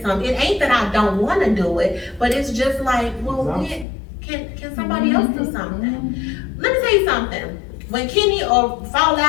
It ain't that I don't want to do it, but it's just like, well, can somebody else do something? Let me tell you something. When Kenny or fall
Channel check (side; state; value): right; drops out; at 3.9 s